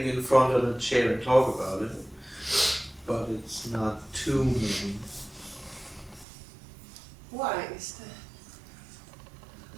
in front of a chair and talk about it, but it's not too many. Why is that?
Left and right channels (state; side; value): drops out; left; at 6.2 s